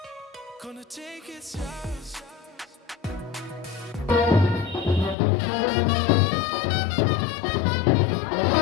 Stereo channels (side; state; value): right; drops out; at 5.2 s